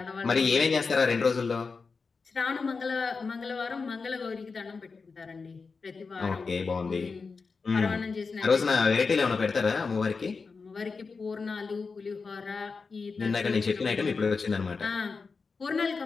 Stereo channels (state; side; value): quieter; right; 4.7 dB